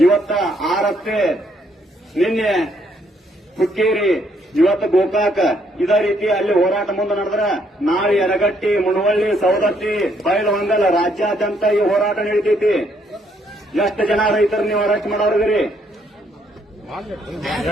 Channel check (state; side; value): normal; both; correlation 0.70